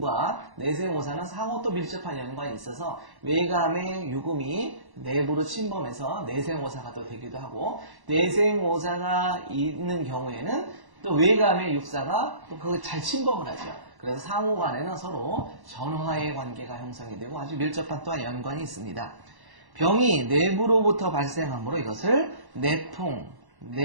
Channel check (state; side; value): late; left; 1.1 ms